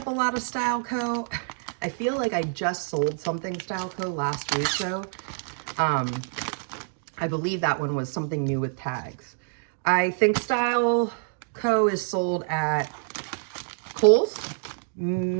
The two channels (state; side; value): silent; left; 60 dB below the other